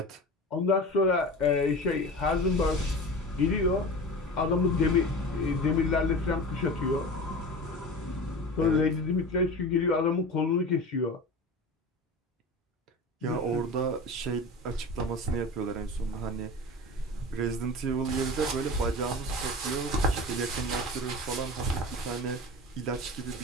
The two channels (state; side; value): normal; both; correlation 0.32